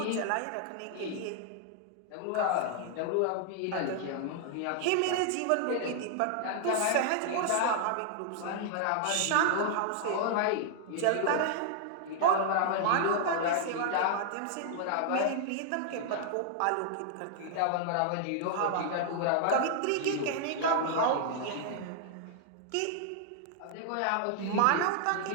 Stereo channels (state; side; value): different; both; correlation 0.00